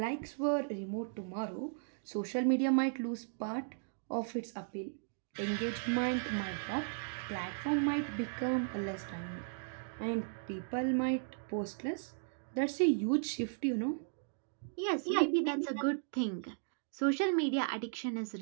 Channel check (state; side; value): silent; left; digital silence